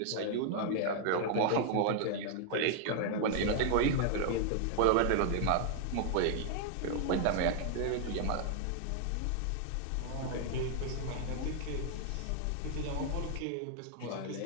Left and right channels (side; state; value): both; different; correlation 0.00